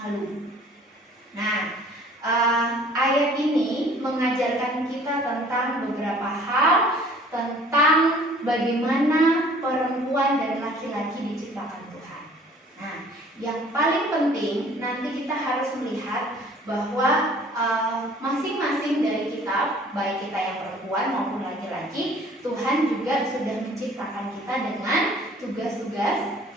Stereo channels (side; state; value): both; normal; correlation 0.53